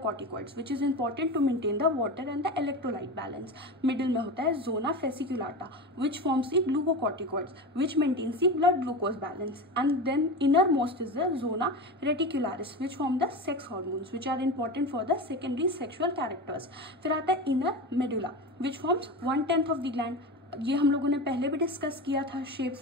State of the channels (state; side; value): normal; both; correlation 0.25